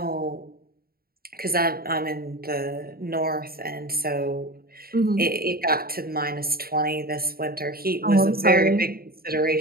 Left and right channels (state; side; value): late; left; 0.44 ms